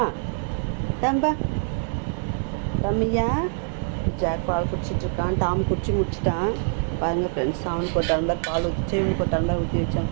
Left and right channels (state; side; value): silent; left; digital silence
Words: டம்பா டம்மியா. ஜாக் பால் குடிச்சிட்டு இருக்கான். டாம் குடிச்சு முடிச்சிட்டான். பாருங்கள் ஃப்ரெண்ட்ஸ், அவனுக்கு ஒரு டம்ளர் பால் ஊற்றிச்சு, இவனுக்கு ஒரு டம்ளர் ஊற்றி வச்சான்,